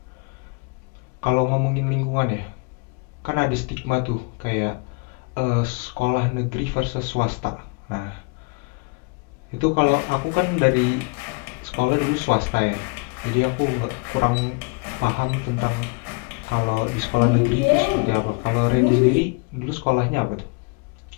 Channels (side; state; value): right; quieter; 31.8 dB